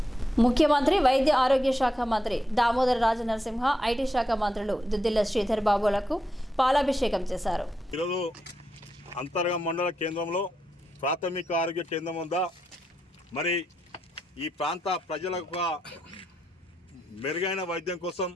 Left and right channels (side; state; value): both; normal; correlation 0.83